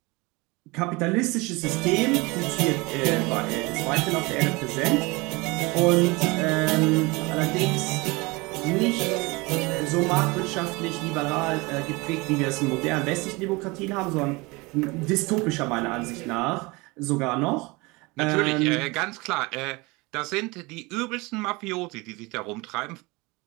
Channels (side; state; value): left; quieter; 24.8 dB